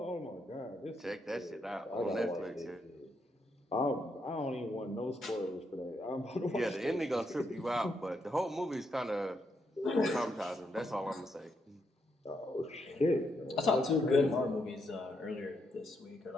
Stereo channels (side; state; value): both; normal; correlation 0.79